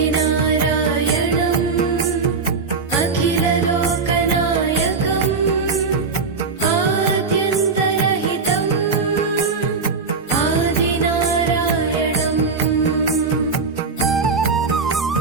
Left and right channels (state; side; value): quieter; left; 4.7 dB